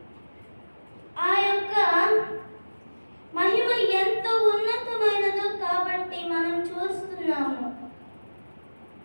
ఆ యొక్క మహిమ ఎంతో ఉన్నతమైనదో కాబట్టి మనం చూస్తున్నాము.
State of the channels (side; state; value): both; inverted; correlation -1.00